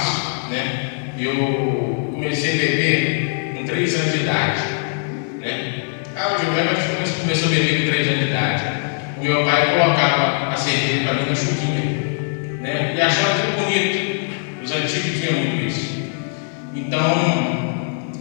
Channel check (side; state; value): right; silent; 59 dB below the other